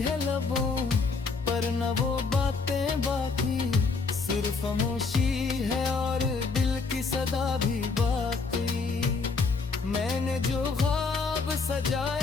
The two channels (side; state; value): right; quieter; 4.4 dB